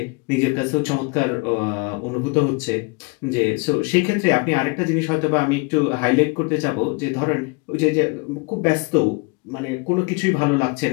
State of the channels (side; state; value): right; quieter; 29.6 dB